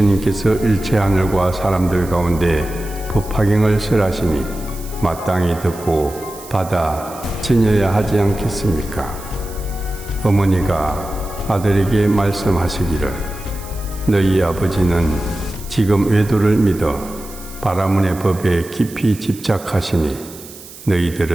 일체 하늘과 사람들 가운데 법화경을 설하시니 마땅히 듣고 받아 지녀야 하지 않겠습니까? 어머니가 아들에게 말씀하시기를, 너희 아버지는 지금 외도를 믿어 바라문의 법에 깊이 집착하시니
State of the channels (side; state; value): right; noise; hiss, 17 dB below the sound